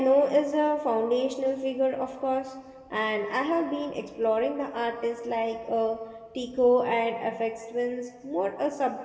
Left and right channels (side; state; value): both; identical; correlation 1.00